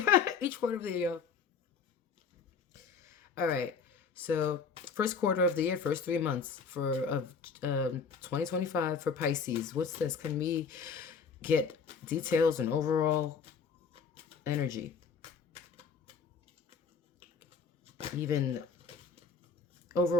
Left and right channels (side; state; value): right; quieter; 5.8 dB